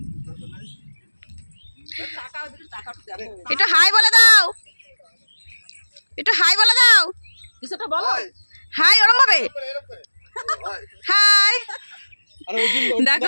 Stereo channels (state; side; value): inverted; both; correlation -1.00